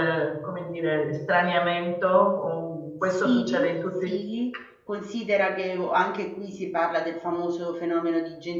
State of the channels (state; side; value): identical; both; correlation 1.00